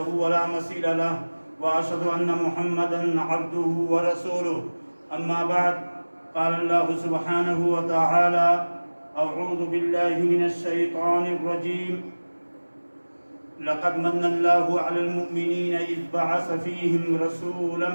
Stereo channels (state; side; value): inverted; both; correlation -1.00